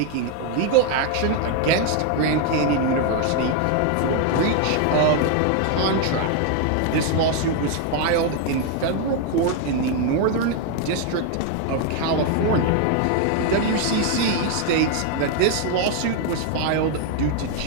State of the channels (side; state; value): both; different; correlation 0.00